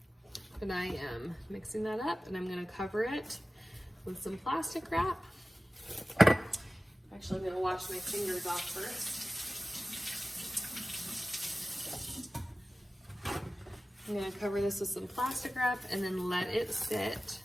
But I am mixing that up, and I'm gonna cover it with some plastic wrap. Actually, I'm gonna wash my fingers off first. I'm gonna cover this with some plastic wrap and then let it sit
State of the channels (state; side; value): normal; both; correlation 0.96